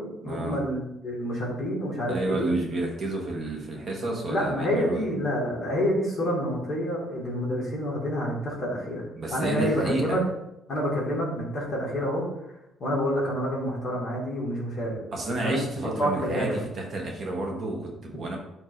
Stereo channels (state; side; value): normal; both; correlation 0.61